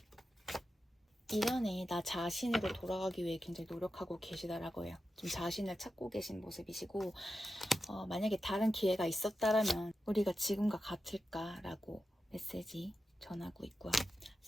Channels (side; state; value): both; normal; correlation 0.91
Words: 이전에 나 자신으로 돌아가기 위해 굉장히 노력하고 계시다라고 해요. 좀 자신을 찾고 계신 모습이시고, 만약에 다른 기회가 있었다라면 우리가 지금과 같을까라고 메시지 전하고 있고요.